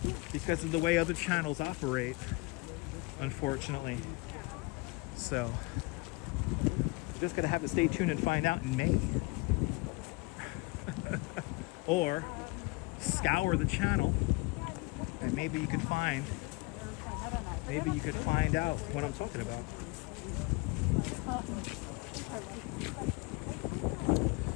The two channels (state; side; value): quieter; right; 25.7 dB